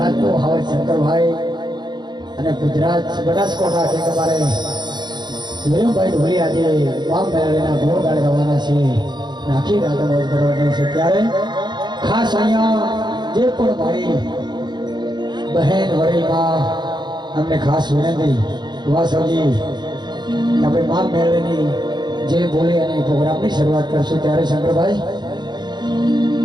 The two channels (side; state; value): left; late; 0.21 ms